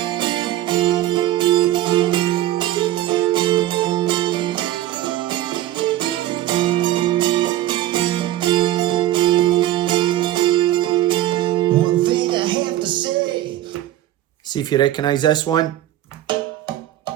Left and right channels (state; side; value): quieter; left; 14.1 dB